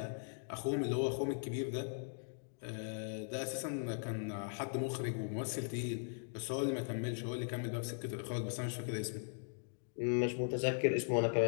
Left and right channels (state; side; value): silent; right; digital silence